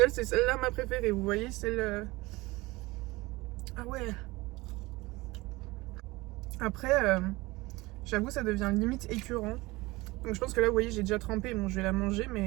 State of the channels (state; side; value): quieter; left; 21.5 dB